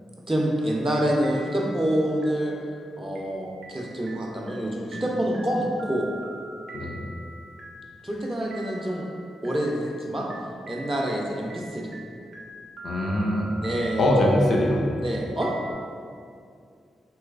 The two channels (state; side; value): normal; both; correlation 0.85